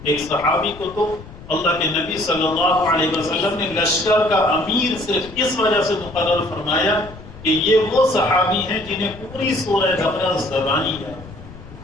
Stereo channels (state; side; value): noise; left; rumble, 17 dB below the sound